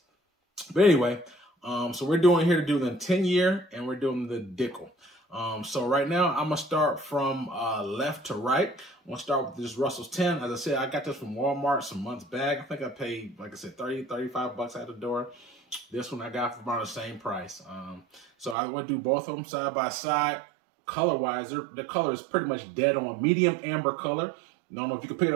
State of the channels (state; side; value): drops out; left; at 18.6 s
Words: But anyway, so we're doing here to do the 10-year, and we're doing the Dickel. So right now, I'm going to start from left to right. I'm going to start with this Russell's 10. As I said, I got this from Walmart some months back. I think I paid, like I said, $35 out the door. This one I got for about the same price. So I would do both of them side by side. Color-wise, the color is pretty much dead on. Medium amber color. I don't know if you can pick it